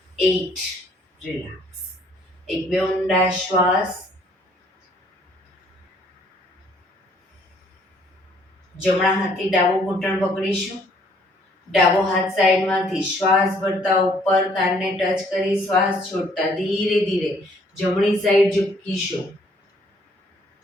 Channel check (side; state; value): both; normal; correlation 0.63